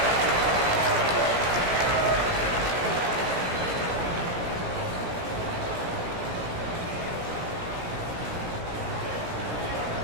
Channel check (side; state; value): left; late; 17 ms